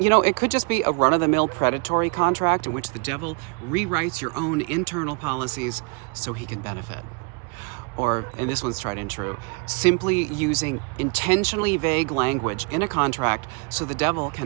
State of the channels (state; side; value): quieter; left; 34.7 dB